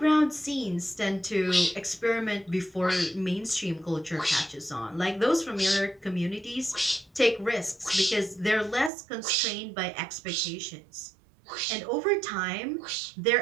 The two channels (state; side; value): drops out; left; at 8.9 s